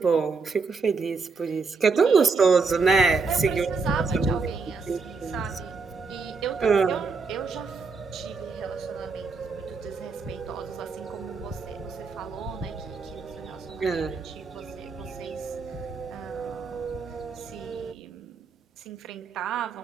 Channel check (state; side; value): quieter; left; 4.6 dB